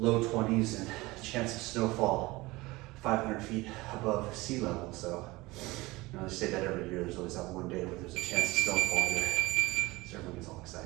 20s and chance of snowfall 500 feet above sea level, so you know, they say that every year. There's always that one day where there's a chance of snowfall here. So everyone gets all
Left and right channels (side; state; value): left; quieter; 21.1 dB